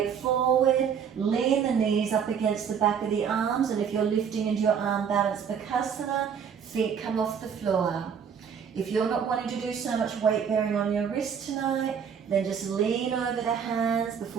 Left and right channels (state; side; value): quieter; left; 7.3 dB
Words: forward, lean the knees up against the back of the arms, and if you're lifting into your arm balance Bakasana, feet come off the floor. If you're not wanting to do so much weight bearing on your wrist tonight, then just lean over the hands.